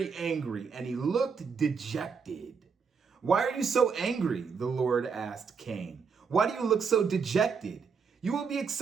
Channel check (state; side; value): quieter; left; 5.8 dB